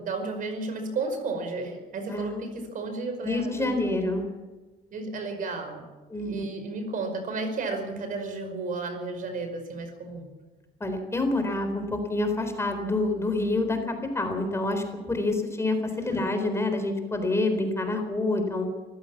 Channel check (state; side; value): normal; both; correlation 0.58